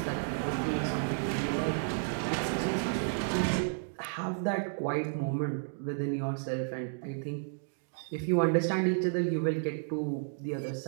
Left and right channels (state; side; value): silent; left; digital silence